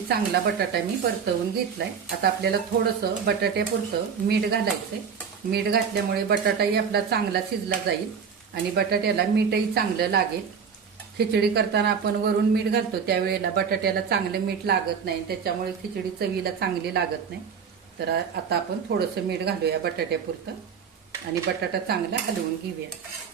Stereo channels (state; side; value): quieter; left; 6.6 dB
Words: चांगला बटाटा मी परतवून घेतलाय. आता आपल्याला थोडंसं बटाट्यापुरतं मीठ घालायचंय. मीठ घातल्यामुळे बटाटाही आपला चांगला शिजला जाईल आणि बटाट्याला मीठही चांगलं लागेल. खिचडी करताना आपण वरून मीठ घालतो त्यावेळेला बटाट्याला चांगलं मीठ लागत नाही, त्याच्यामुळे खिचडी चवीला चांगली लागत नाही. तर आता आपण थोडंसं मीठ घालूया बटाट्यापुरतं आणि बटाटा चांगला हलवून घेऊया.